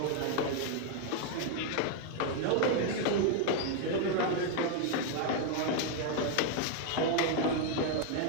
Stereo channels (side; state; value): both; different; correlation 0.00